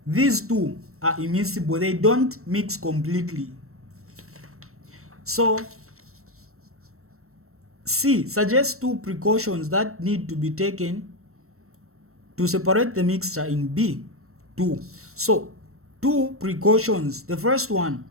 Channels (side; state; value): left; late; 0.63 ms